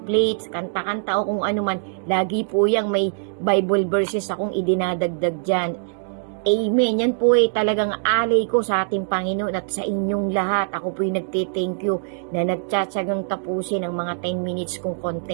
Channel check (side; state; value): left; silent; digital silence